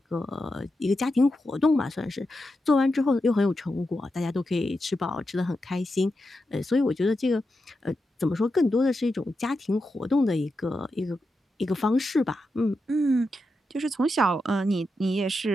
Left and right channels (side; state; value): both; normal; correlation 0.88